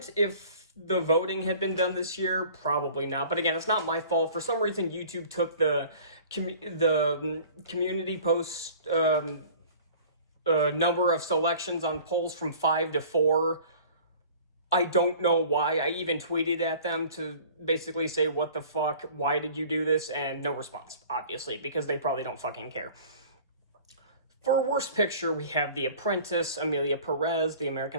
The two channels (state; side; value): inverted; both; correlation -0.46